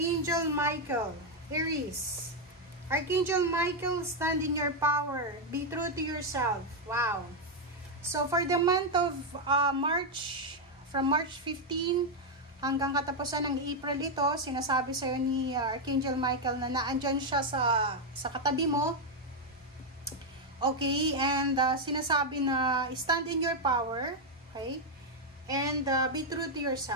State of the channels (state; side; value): normal; both; correlation 0.01